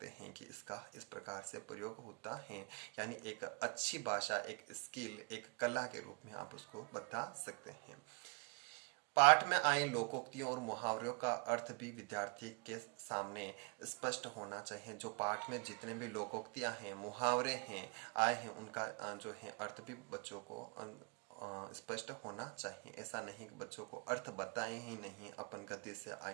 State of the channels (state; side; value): quieter; left; 35.1 dB